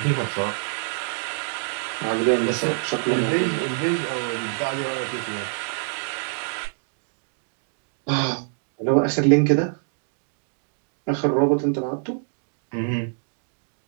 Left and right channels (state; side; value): silent; left; digital silence